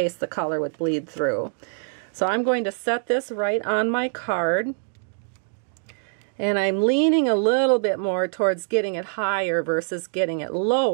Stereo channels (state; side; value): silent; left; digital silence